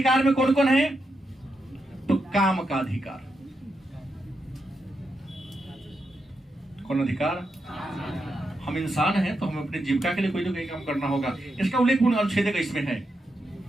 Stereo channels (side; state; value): both; normal; correlation 0.85